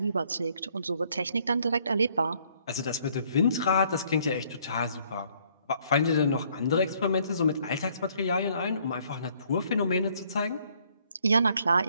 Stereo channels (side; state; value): both; inverted; correlation -0.65